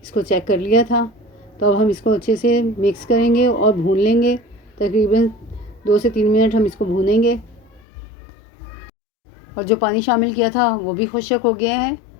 इसको चेक कर लिया था। तो अब हम इसको अच्छे से मिक्स करेंगे और भून लेंगे। तकरीबन 2 से 3 मिनट हम इसको भूनेंगे। और जो पानी शामिल किया था वो भी खुश्क हो गया है।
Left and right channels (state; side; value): drops out; right; at 7.8 s